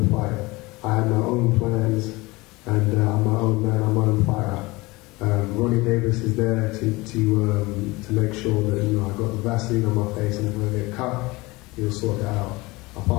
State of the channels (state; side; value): quieter; right; 22.5 dB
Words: fight. I have my own plans, and I'm my own man, I'm my own fighter. Ronnie Davis is there to make sure that, you know, I got the Vaseline on my face, and if I get cut, he'll sort it out.